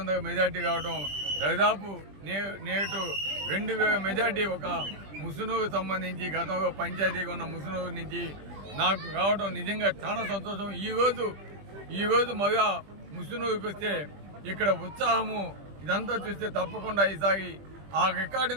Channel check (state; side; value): late; left; 20 ms